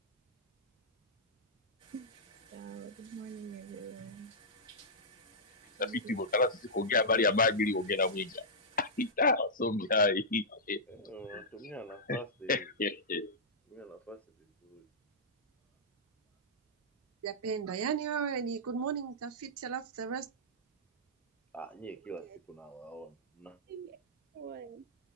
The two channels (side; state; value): both; normal; correlation -0.12